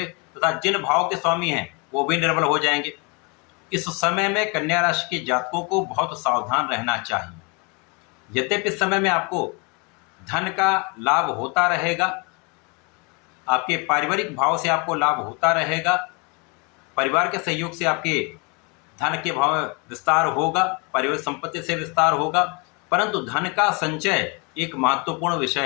तथा जिन भाव के स्वामी हैं वो भी निर्बल हो जाएंगे। इस समय में कन्या राशि के जातकों को बहुत सावधान रहना चाहिए। यद्यपि इस समय में आपको धन का लाभ होता रहेगा, आपके पारिवारिक भाव से आपको लाभ होता रहेगा, परिवार के सहयोग से आपके धन के भाव में विस्तार होगा, पारिवारिक संपत्ति से विस्तार होगा, परंतु धन का संचय एक महत्वपूर्ण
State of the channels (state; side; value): quieter; right; 31.4 dB